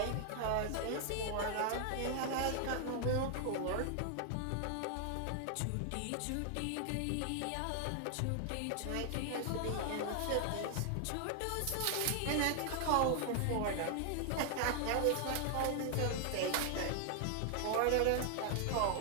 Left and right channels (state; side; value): different; both; correlation 0.00